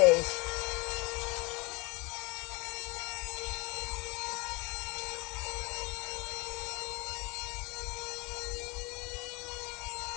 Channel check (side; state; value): right; quieter; 26.5 dB